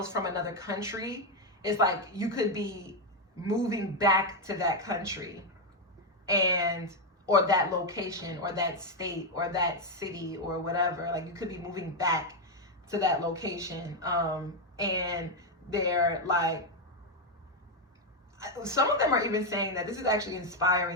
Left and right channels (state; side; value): normal; both; correlation 0.04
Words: from another country, it's like you could be moving back to that country, or that location, or that state, or that city, or whatever. Like you could be moving back to that location. And they're like, some of them are even saying that this is actually